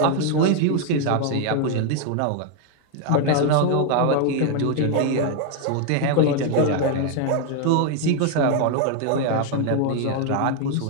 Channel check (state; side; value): different; both; correlation 0.00